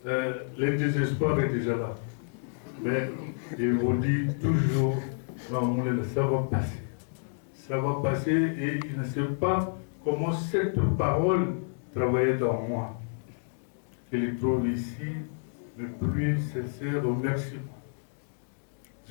le désespoir est déjà là. Mais il vous dit toujours, non, ça va passer. Ça va passer et il ne sait pas comment cette parole travaillait dans moi. Je les trouve ici le plus sincère remerciement.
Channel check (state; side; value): silent; right; digital silence